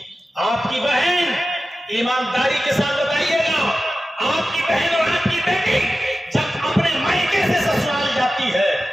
آپ کی بہن, ایمانداری کے ساتھ بتائیے گا, آپ کی بہن اور آپ کی بیٹی جب اپنے مائکے سے سسرال جاتی ہے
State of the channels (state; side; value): normal; both; correlation 0.94